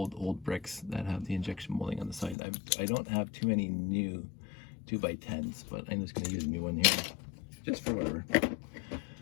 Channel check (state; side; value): drops out; right; at 2.4 s